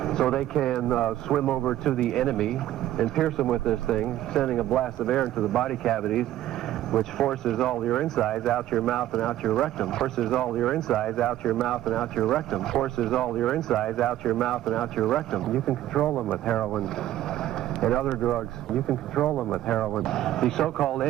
So they can swim over to the enemy and pierce them with this thing, sending a blast of air into the body cavities, which forces all your insides out your mouth and out your rectum. Forces all your insides out your mouth and out your rectum. Forces all your insides out your mouth and out your rectum. You can control them with heroin and other drugs. You can control them with heroin. The so-called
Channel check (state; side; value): quieter; left; 13.4 dB